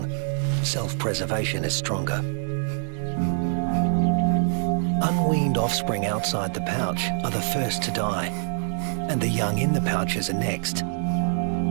self-preservation is stronger. Unweaned offspring outside the pouch are the first to die, and the young in the pouches are next.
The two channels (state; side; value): silent; left; digital silence